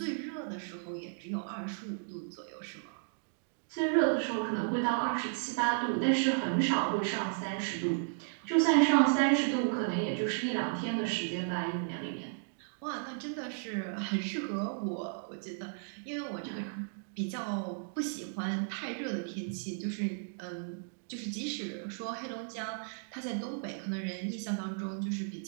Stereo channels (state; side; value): silent; left; digital silence